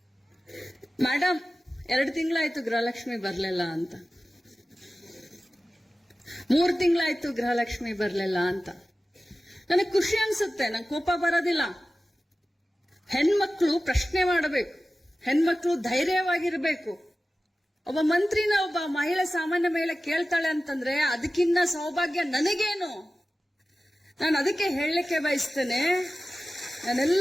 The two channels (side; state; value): both; normal; correlation 0.95